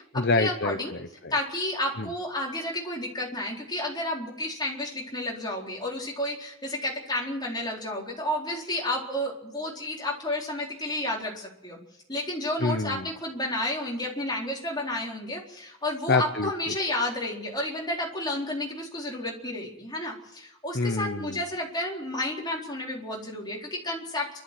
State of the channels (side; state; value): both; normal; correlation 0.08